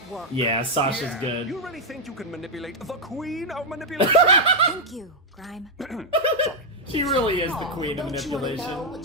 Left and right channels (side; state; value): both; normal; correlation -0.02